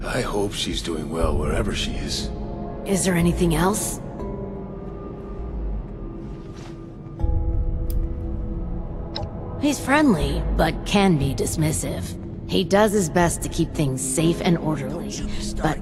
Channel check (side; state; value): both; identical; correlation 1.00